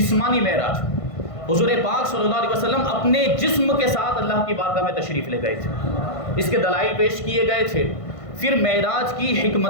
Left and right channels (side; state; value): right; late; 1.5 ms